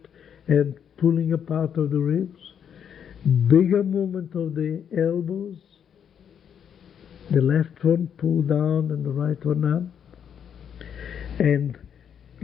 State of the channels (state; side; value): quieter; right; 8.3 dB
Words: and pulling apart of the ribs, bigger movement of the elbows, the left one pull down and the right one up, and